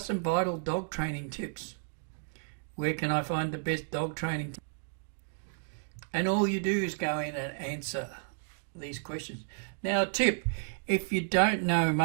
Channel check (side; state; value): left; silent; digital silence